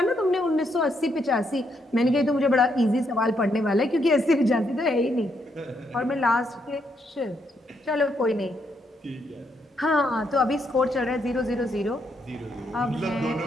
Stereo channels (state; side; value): normal; both; correlation 0.76